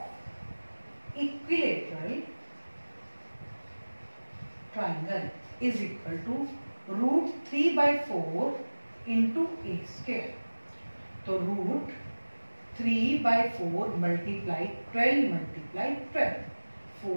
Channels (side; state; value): both; inverted; correlation -1.00